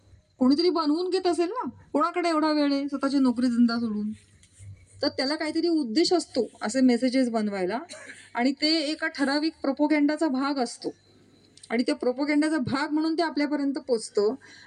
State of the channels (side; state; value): both; identical; correlation 1.00